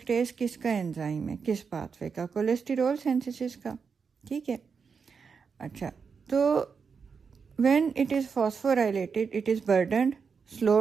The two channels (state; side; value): quieter; left; 5.8 dB